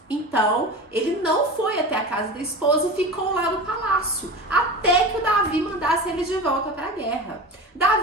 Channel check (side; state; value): both; normal; correlation 0.31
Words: Então, ele não foi até a casa da esposa e ficou lá no palácio, até que o Davi mandasse ele de volta para a guerra.